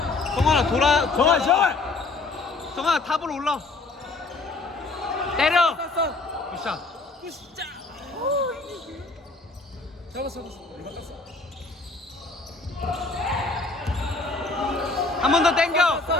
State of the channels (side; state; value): right; quieter; 3.6 dB